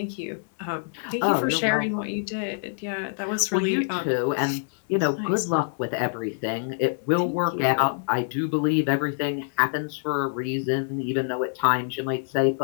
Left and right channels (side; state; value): right; silent; digital silence